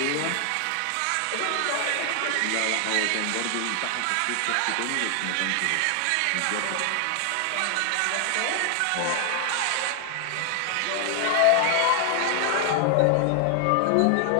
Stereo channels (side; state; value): both; different; correlation 0.00